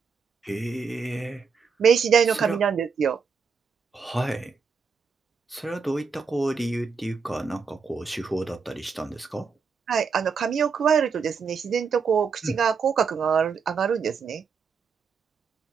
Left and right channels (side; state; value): left; quieter; 5.7 dB